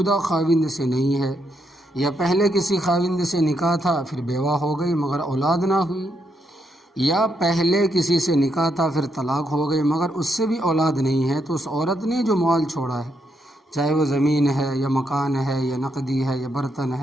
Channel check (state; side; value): normal; both; correlation 0.78